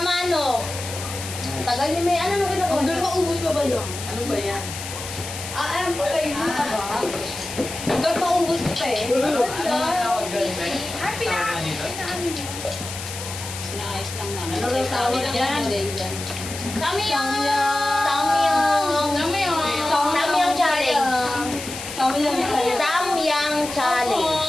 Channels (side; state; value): left; noise; hiss, 9 dB below the sound